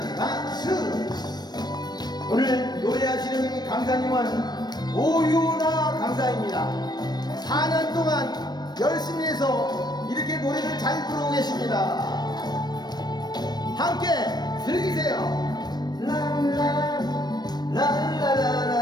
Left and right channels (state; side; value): late; right; 0.20 ms